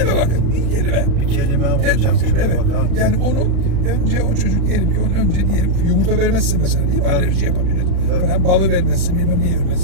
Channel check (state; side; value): late; left; 36 ms